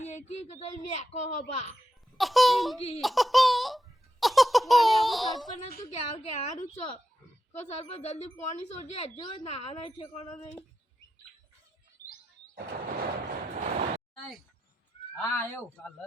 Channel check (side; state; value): both; normal; correlation 0.88